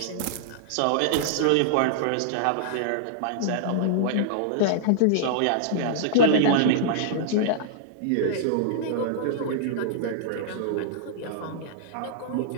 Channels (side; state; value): both; different; correlation -0.02